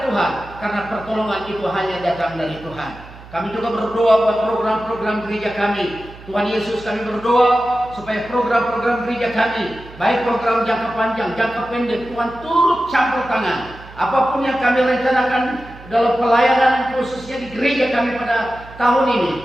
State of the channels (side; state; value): right; noise; hum, 19 dB below the sound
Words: Tuhan, karena pertolongan itu hanya datang dari Tuhan. Kami juga berdoa buat program-program gereja kami. Tuhan Yesus, kami berdoa supaya program-program gereja kami, baik program jangka panjang, jangka pendek, Tuhan turut campur tangan. Apapun yang kami rencanakan dalam pelayanan khususnya di gereja kami pada tahun ini,